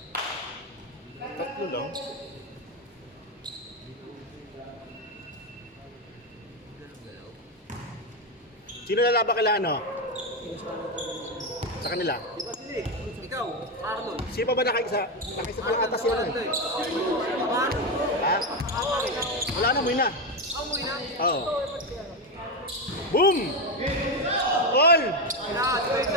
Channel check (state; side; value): normal; both; correlation 0.10